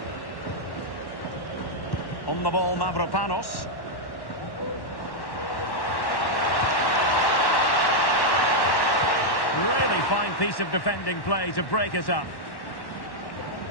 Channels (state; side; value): late; right; 1.1 ms